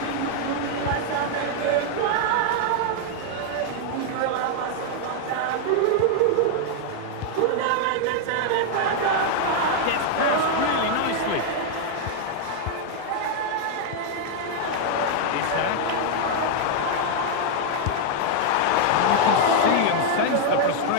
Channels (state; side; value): different; both; correlation 0.00